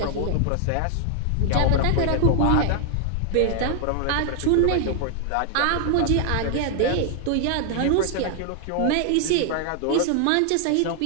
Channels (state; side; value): different; both; correlation 0.00